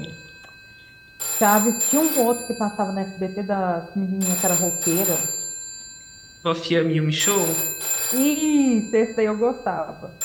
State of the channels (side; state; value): both; identical; correlation 1.00